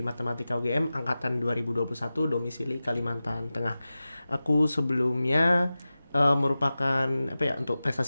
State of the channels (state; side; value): inverted; both; correlation -0.95